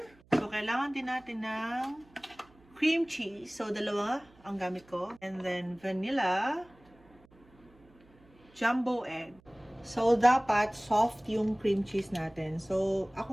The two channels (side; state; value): right; noise; hum, 29 dB below the sound